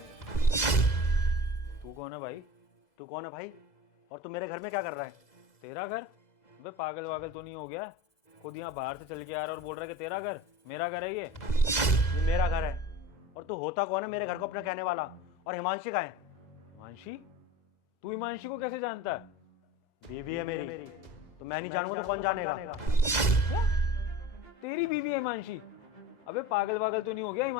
तू कौन है भाई? तू कौन है भाई? और तू मेरे घर में क्या कर रहा है? तेरा घर? अबे पागल वागल तो नहीं हो गया? खुद यहाँ बाहर से चल के आ रहा है और बोल रहा है कि तेरा घर? मेरा घर है ये। ये मेरा घर है। और तू होता कौन है मेरे घर को अपना कहने वाला? और हिमांशी कहाँ है? हिमांशी? तू हिमांशी को कैसे जानता है? बीवी है मेरी। तो मैं नहीं जानूंगा तो कौन जानेगा? क्या? तेरी बीवी है हिमांशी? अबे पागल वागल तो नहीं हो गया?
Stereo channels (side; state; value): right; late; 2.0 ms